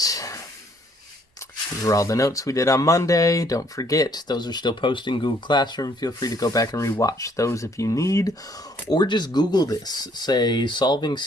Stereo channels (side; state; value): both; normal; correlation 0.65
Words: These are all the notes we did on Monday. Don't forget, those are still posted in Google Classroom. Feel free to go back and rewatch those if you need. Or just Google this. Say, solving